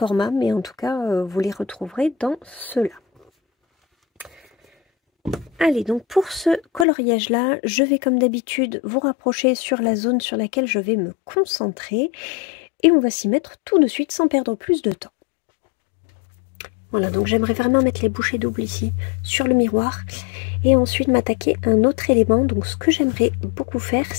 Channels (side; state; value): right; drops out; at 6.9 s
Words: mais en tout cas, vous les retrouverez dans ceux-là. Allez, donc pour ce coloriage-là, je vais comme d'habitude vous rapprocher sur la zone sur laquelle je vais me concentrer. Et on va s'y mettre tout de suite sans perdre plus de temps. Voilà, donc j'aimerais vraiment mettre les bouchées doubles ici sur le miroir. Et ensuite m'attaquer à un autre élément. Donc ce que j'aimerais beaucoup faire,